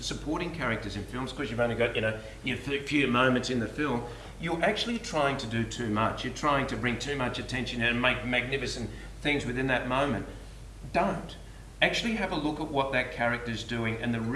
supporting characters in films, because you've only got, your few moments in the film, you're actually trying to do too much. You're trying to bring too much attention and make magnificent things within that moment. Don't. Actually have a look at what that character is doing and the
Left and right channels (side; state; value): both; identical; correlation 1.00